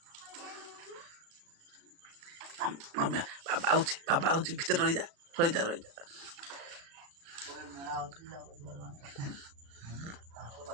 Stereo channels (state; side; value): late; left; 36 ms